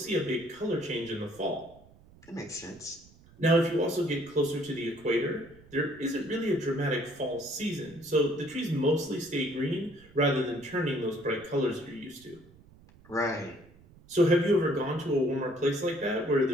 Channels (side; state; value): right; noise; rumble, 25 dB below the sound